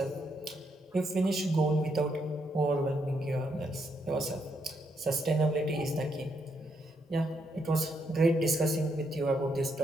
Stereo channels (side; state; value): both; normal; correlation 0.77